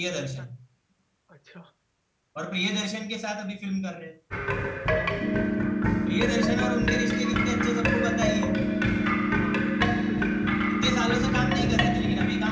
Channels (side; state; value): both; identical; correlation 1.00